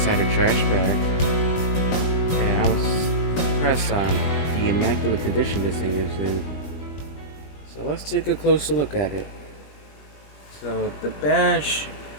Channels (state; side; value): late; right; 21 ms